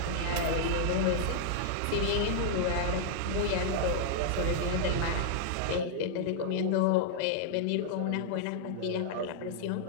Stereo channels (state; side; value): different; both; correlation -0.01